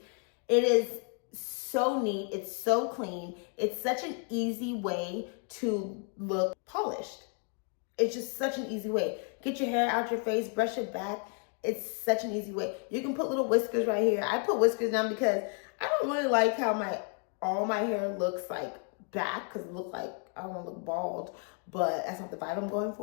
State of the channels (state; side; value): quieter; right; 39.4 dB